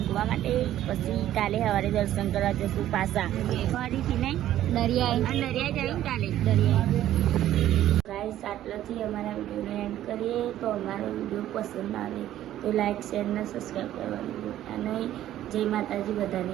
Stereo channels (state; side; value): quieter; left; 12.7 dB